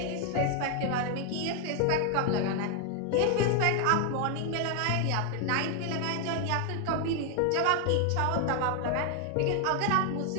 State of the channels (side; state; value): both; different; correlation 0.01